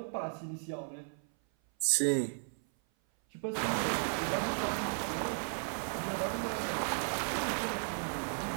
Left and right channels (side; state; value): left; silent; 54 dB below the other